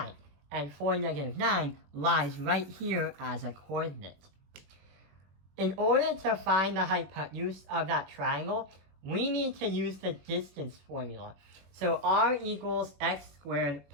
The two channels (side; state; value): left; late; 21 ms